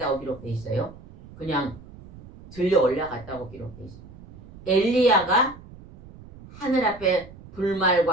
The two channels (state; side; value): noise; right; rumble, 19 dB below the sound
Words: 기록되어 있어요. 그냥 들려 올라갔다고 기록되어 있습니다. 엘리야가 하늘 앞에